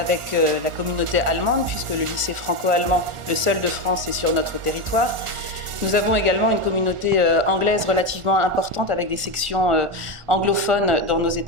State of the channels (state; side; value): late; left; 1.4 ms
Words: la communauté allemande, puisque le lycée franco-allemand, le seul de France, est sur notre territoire. Nous avons également une communauté anglaise relativement importante, avec des sections anglophones dans nos